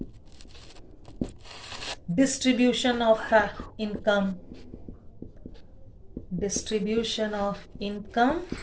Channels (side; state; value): both; identical; correlation 1.00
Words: distribution of income,